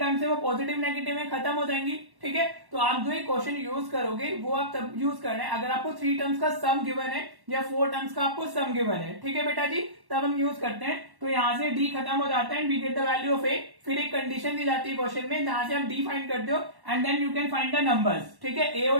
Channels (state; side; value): late; left; 1.1 ms